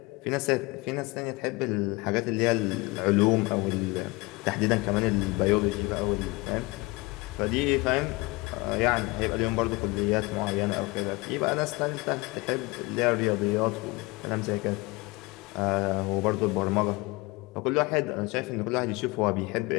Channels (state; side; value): quieter; right; 24.2 dB